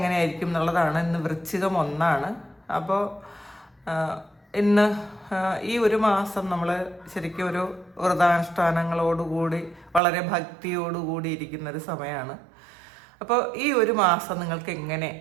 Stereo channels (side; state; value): left; drops out; at 10.0 s